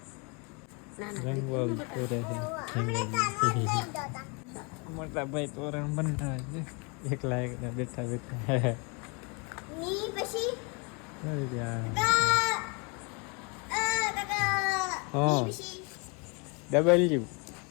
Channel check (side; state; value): right; quieter; 32.3 dB